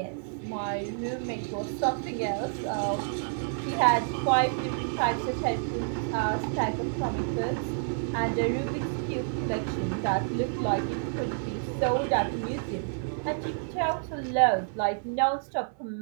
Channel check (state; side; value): silent; left; 59 dB below the other